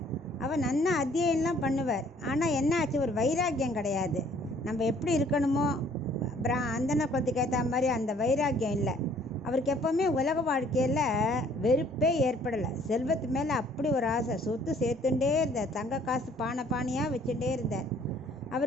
அவர் நன்னா அத்தியனம்லாம் பண்ணுவார். ஆனால் என்ன ஆச்சு, ஒரு வைராக்கியம் கிடையாது. நம்ம எப்படி இருக்கணுமோ அந்தன குலத்துக்கு ஏற்ற மாதிரி அந்த வைராக்கியம் இல்லை அவருக்கு. எப்போவுமே உலக வாழ்க்கையில் வெறுப்பே ஏற்படலை. செல்வத்து மேலே அப்படி ஒரு ஆசை. சொத்து சேர்த்துட்டே இருந்தார். தங்க காசு பானை பானையாக வச்சுட்டே இருந்தார்.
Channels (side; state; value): both; normal; correlation 0.59